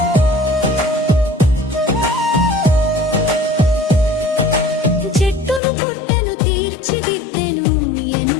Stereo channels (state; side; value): drops out; right; at 5.6 s